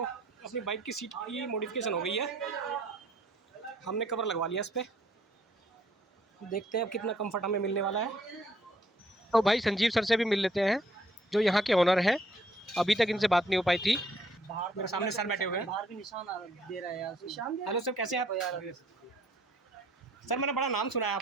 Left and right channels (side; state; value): both; normal; correlation 0.65